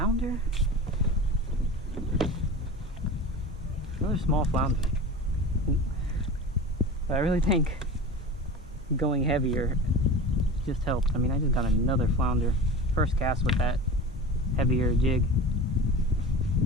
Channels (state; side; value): normal; both; correlation 0.33